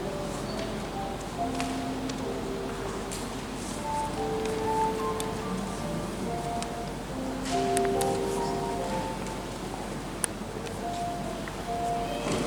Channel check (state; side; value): identical; both; correlation 1.00